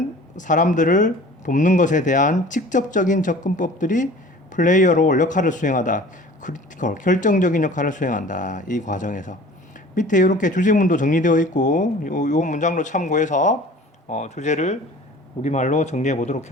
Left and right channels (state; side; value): normal; both; correlation 0.45